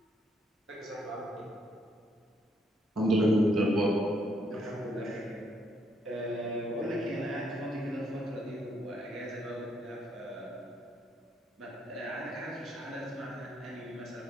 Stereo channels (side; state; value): both; normal; correlation 0.73